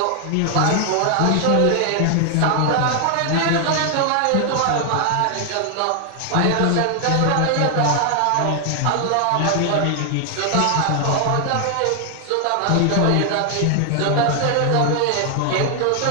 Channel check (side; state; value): both; different; correlation 0.00